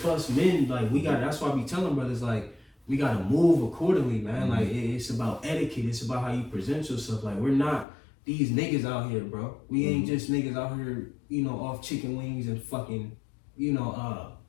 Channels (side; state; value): right; drops out; at 7.9 s